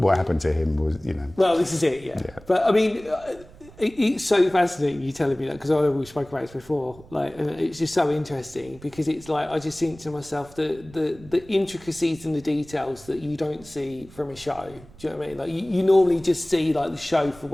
happened to him was, Well, this is it, yeah. But I mean, it's so fascinating you telling me that, because I know we spoke about this before. Like, and it's just so interesting because it's like I just think to myself the intricacies and the details that you don't see from a show. Do you know what I mean? Like you normally just see like the show for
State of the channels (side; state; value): right; noise; rumble, 22 dB below the sound